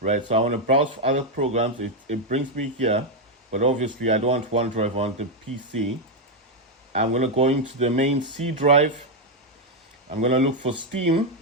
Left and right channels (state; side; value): normal; both; correlation 0.02